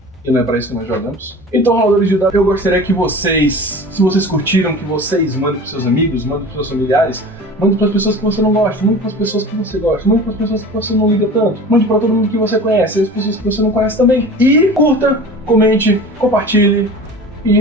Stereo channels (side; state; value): both; normal; correlation 0.38